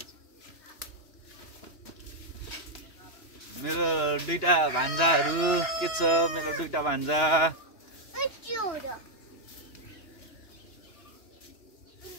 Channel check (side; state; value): right; late; 2.9 ms